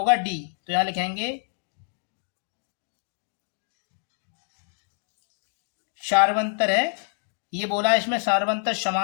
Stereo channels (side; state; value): right; silent; digital silence